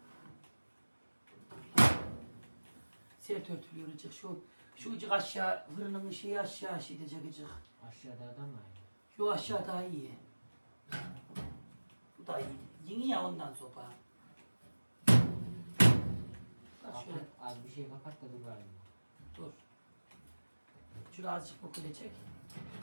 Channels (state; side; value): inverted; both; correlation -1.00